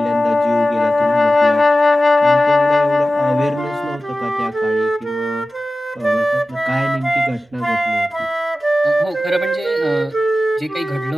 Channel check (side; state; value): both; normal; correlation 0.94